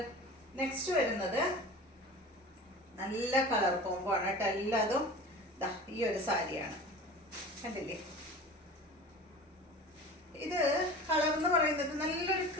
നെക്സ്റ്റ് വരുന്നത് നല്ല കളർ കോംബോ ആണ് കേട്ടോ. എല്ലാതും ഈ ഒരു സാരിയാണ്, കണ്ടില്ലേ. ഇത് കളർ എന്ന് പറയുന്നത് നല്ലൊരു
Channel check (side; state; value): both; normal; correlation 0.37